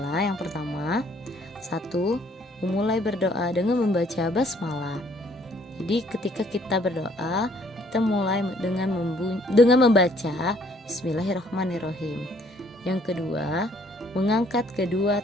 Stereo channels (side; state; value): both; normal; correlation 0.62